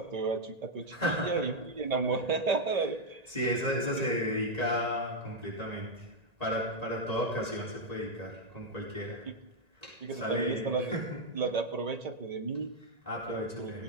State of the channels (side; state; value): left; late; 1.8 ms